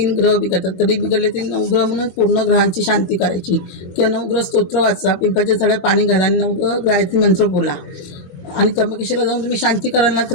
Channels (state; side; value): late; right; 22 ms